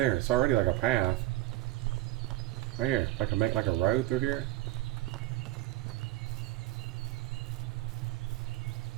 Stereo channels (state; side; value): quieter; left; 16.8 dB